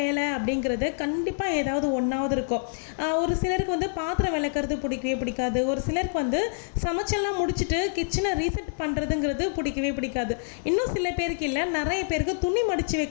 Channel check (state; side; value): silent; right; 56 dB below the other